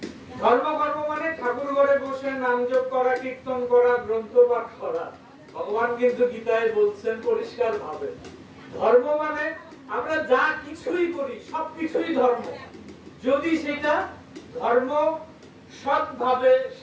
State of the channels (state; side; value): identical; both; correlation 1.00